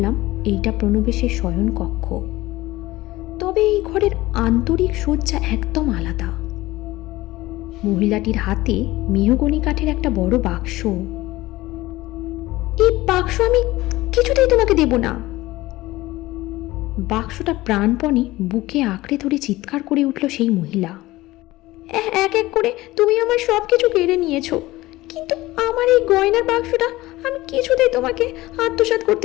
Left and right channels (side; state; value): right; quieter; 18.3 dB